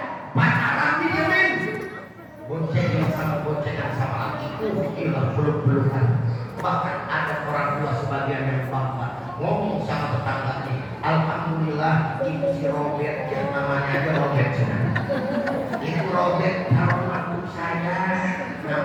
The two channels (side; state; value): both; identical; correlation 1.00